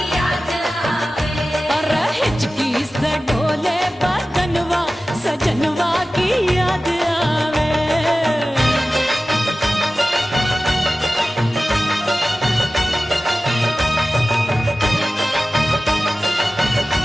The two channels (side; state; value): both; normal; correlation 0.96